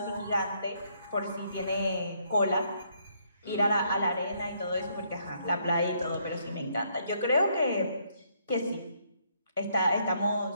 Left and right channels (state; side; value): inverted; both; correlation -0.71